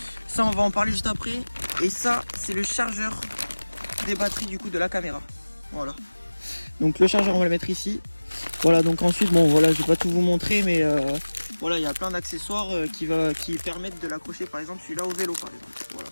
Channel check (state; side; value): inverted; both; correlation -1.00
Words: ça on va en parler juste après. Et ça c'est le chargeur des batteries du coup de la caméra. Voilà, donc le chargeur on va le mettre ici. Voilà, donc ensuite, bon voilà, je vais pas tout vous montrer, mais voilà, il y a plein d'accessoires qui permettent de l'accrocher, par exemple celui-là au vélo, par exemple. Voilà.